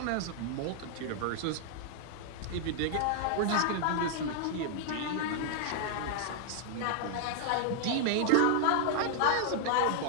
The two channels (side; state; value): both; different; correlation -0.01